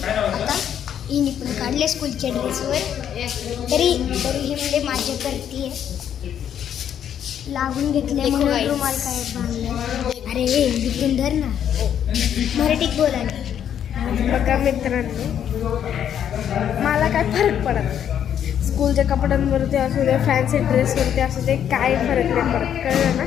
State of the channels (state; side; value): quieter; right; 9.4 dB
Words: हिने पण काढले स्कूलच्या ड्रेसवर. तरी ही म्हणजे माझ्या करते लागून घेतले म्हणून रुमाल काय बांधले. अरे इथून धर ना, मराठीत बोलायला. बघा मित्रांनो, मला काय फरक पडत नाही. स्कूलच्या कपड्यांवरती असू दे, फॅन्सी ड्रेसवरती असू दे, काय फरक नाही पडत, कळलं ना.